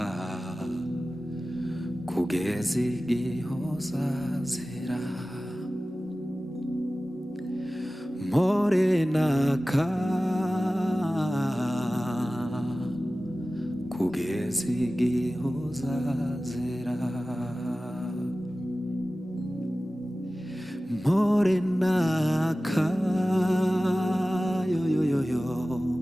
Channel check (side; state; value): both; normal; correlation 0.96